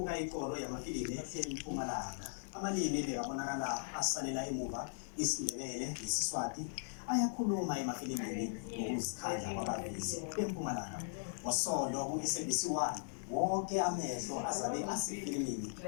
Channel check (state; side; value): silent; right; 52 dB below the other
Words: ikoro yamafilimu eMpumalanga. Amalimi bekabonakala asalela emuva isiNdebele nesiswati ayakhuluma emafilimini ngokuzikhandla kwabavezi beMpumalanga. Ngosondo ku-SABC 1 wonke amehlo azabe asefilimini